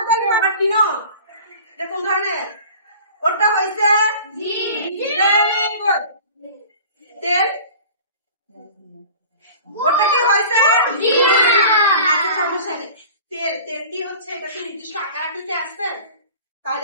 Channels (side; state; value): both; inverted; correlation -0.41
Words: ধরে আবার কিনো। এটা কোন ধরনের? ওটা হয়েছে তেল। ওটা কি হয়েছে? আচ্ছা, সমস্যা নেই। তেলটি হচ্ছে এটা তো নির্দিষ্ট আকার আকৃতি আসছে, তাহলে